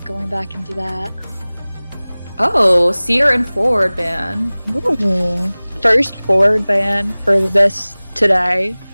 going back into that. Oh, Seer and forward ban. Ooh. First forward ban for this today.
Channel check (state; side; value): inverted; both; correlation -0.99